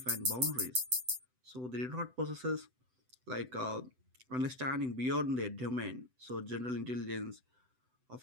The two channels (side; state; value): left; late; 7.9 ms